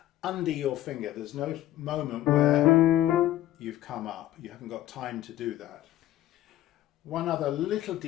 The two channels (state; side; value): quieter; right; 14.1 dB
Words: under your finger. There's no moment where you've come up. You haven't got time to do that. One other little